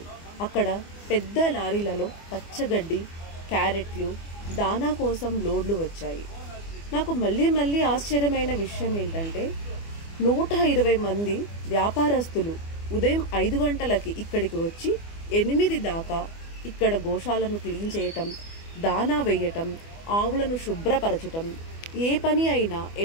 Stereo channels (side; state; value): right; late; 24 ms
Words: అక్కడ పెద్ద లారీలలో పచ్చగడ్డి, క్యారెట్లు, దానా కోసం లోడ్లు వచ్చాయి. నాకు మళ్ళీ ఆశ్చర్యమైన విషయం ఏంటంటే 120 మంది వ్యాపారస్తులు ఉదయం 5 గంటలకి ఇక్కడికి వచ్చి 8 దాకా ఇక్కడ గోశాలను క్లీన్ చేయటం, దానా వేయటం, ఆవులను శుభ్రపరచటం, ఏ పని అయినా